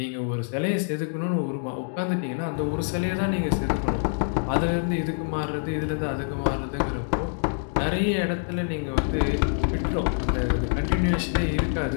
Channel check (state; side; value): silent; right; digital silence